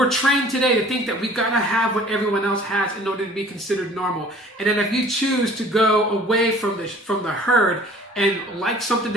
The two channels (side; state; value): both; normal; correlation 0.51